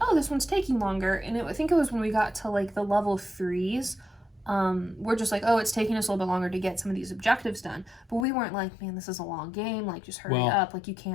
"Oh, this one's taking longer," and I think it was when we got to like the level 3s. We're just like, oh, it's taking us a little bit longer to get some of these objectives done. But we weren't like, man, this is a long game. Like, just hurry up, like you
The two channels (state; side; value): drops out; right; at 8.2 s